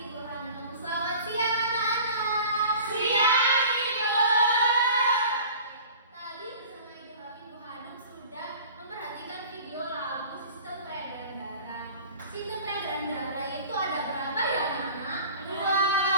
Bu Hanum. Selamat siang anak-anak. Siang, Ibu. Tadi bersama Ibu Hanum sudah memperhatikan video lagu Sistem Peredaran Darah. Sistem peredaran darah itu ada berapa ya anak-anak? Dua.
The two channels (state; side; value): inverted; both; correlation -0.43